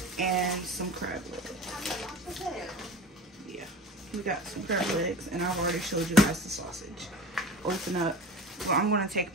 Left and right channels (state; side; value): normal; both; correlation 0.36